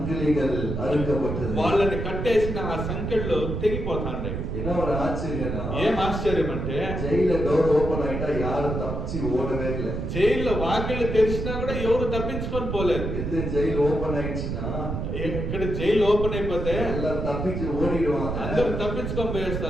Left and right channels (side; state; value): right; noise; rumble, 3 dB below the sound